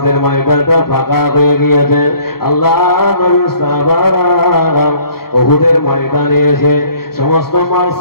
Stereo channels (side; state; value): right; late; 0.94 ms